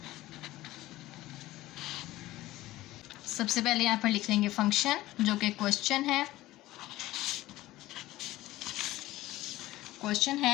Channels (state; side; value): quieter; right; 16.8 dB